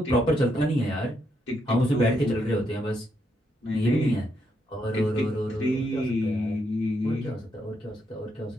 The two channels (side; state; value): both; normal; correlation 0.78